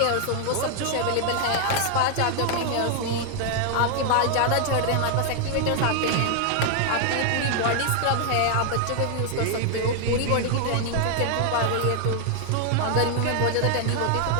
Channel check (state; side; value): different; both; correlation 0.00